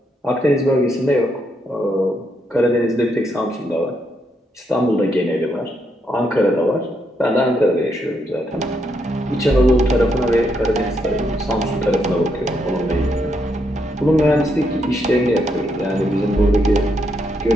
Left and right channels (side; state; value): both; normal; correlation 0.78